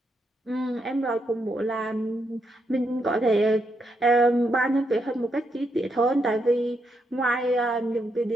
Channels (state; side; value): normal; both; correlation 0.80